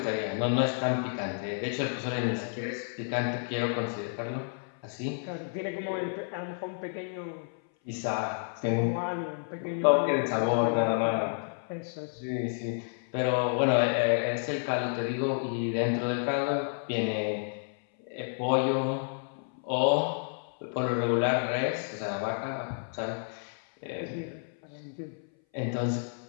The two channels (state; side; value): silent; right; 57 dB below the other